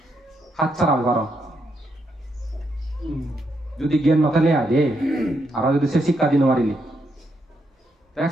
হাত ছাড়াবে পার যদি জ্ঞান নথালে আগে আর যদি সে শিক্ষা দিন মারিলি এক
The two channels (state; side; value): normal; both; correlation 0.79